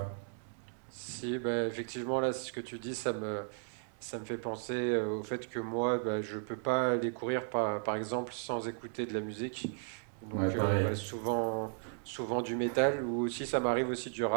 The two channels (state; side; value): silent; left; 54 dB below the other